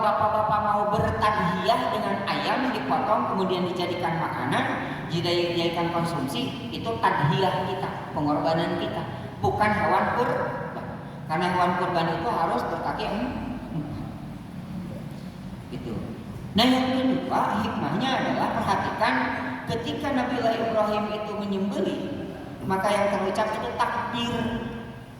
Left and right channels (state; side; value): identical; both; correlation 1.00